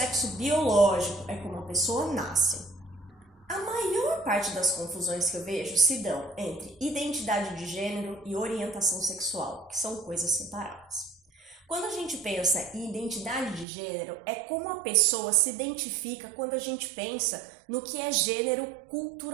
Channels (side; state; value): left; drops out; at 13.7 s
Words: biológico, é como a pessoa nasce. A maior parte das confusões que eu vejo se dão entre identidade de gênero e orientação sexual, que são coisas separadas. Quando a gente pensa em identidade de gênero, é como a pessoa se identifica quando a gente pensa no que é gênero